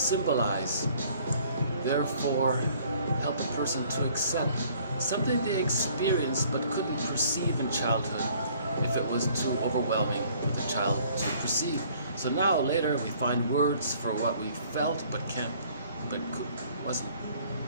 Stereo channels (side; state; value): both; inverted; correlation -0.58